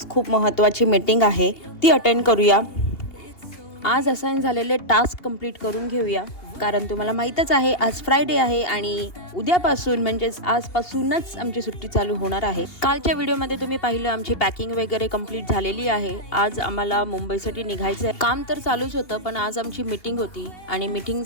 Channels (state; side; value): late; right; 2.8 ms